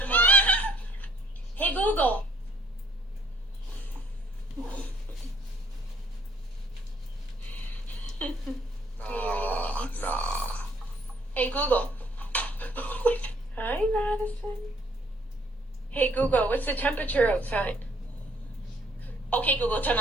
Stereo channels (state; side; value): normal; both; correlation 0.64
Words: tomorrow? Hey Google! Nah. Hey Google. Hi Madison. Hey Google, what's the temperature outside? Okay Google, turn